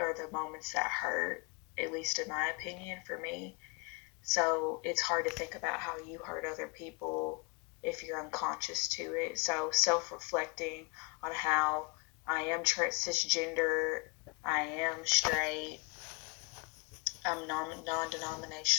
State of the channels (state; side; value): quieter; right; 30.9 dB